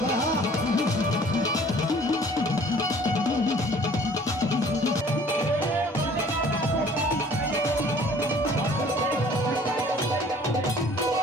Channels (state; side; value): normal; both; correlation 0.53